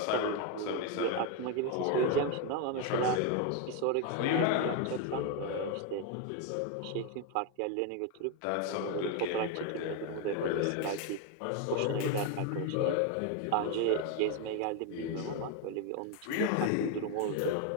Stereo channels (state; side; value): different; both; correlation 0.02